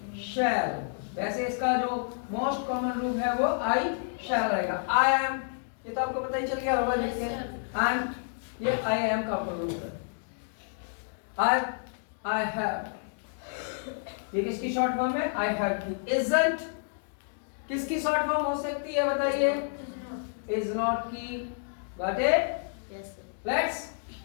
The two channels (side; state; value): right; silent; digital silence